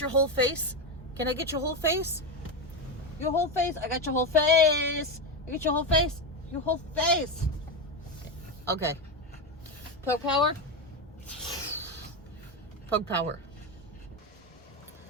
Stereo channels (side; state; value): both; normal; correlation 0.13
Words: whole face? Can I get your whole face? Your whole face? I got your whole face. I get your whole face? Your whole face. Okay. Pug power. Pug power.